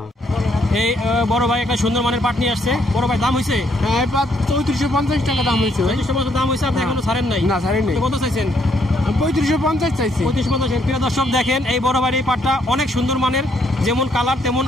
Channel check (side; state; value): both; normal; correlation 0.71